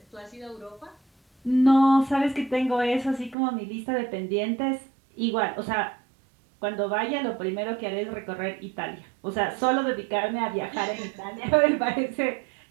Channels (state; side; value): drops out; left; at 3.4 s